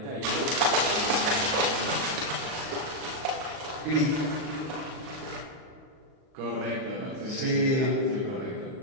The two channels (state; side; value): late; left; 38 ms